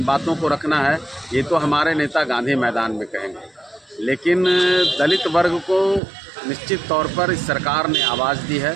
बातों को रखना है, ये तो हमारे नेता गांधी मैदान में कहेंगे। लेकिन दलित वर्ग को निश्चित तौर पर इस सरकार ने आवाज़ दी है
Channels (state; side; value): drops out; left; at 6.0 s